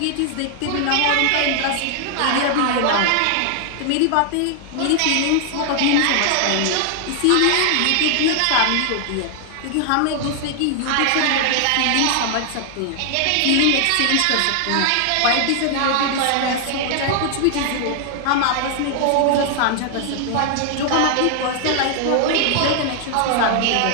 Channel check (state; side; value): different; both; correlation 0.00